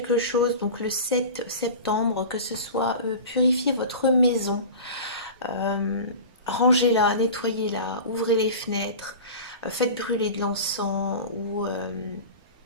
chose, donc le 7 septembre, que ce soit purifier votre maison, euh, rangez-la, nettoyez-la, ouvrez les fenêtres, faites brûler de l'encens ou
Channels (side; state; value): both; inverted; correlation -0.33